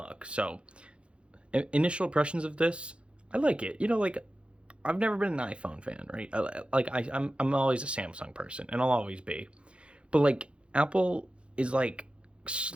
So initial impressions of this, I like it. You know, like I've never been an iPhone fan, right? I'm always a Samsung person, and I'll always be. But like Apple is like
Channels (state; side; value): late; left; 0.058 ms